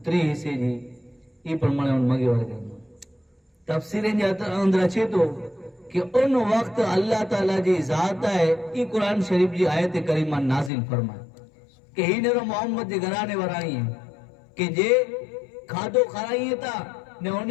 حصے جی یہ پر منے ان مگے والے کریں تفسیریں جاتا اندر اچھے تو کہ ان وقت اللہ تعالیٰ جی ذات ہے یہ قرآن شریف جی آیت کریمہ نازل فرمائے کہ ہی نے محمد جی گھرانے ورائی ہیں کہ جے کھادو کھارائیے تا نے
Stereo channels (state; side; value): drops out; right; at 10.7 s